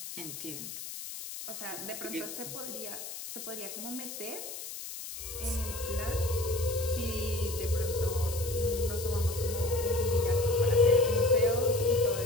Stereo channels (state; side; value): noise; left; hiss, 9 dB below the sound